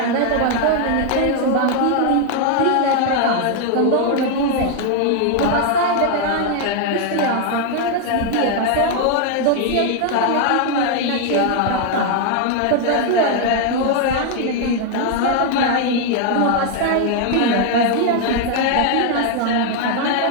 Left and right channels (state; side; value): different; both; correlation 0.00